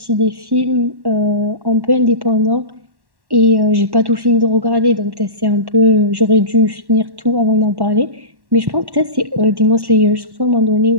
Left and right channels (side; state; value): left; late; 1.1 ms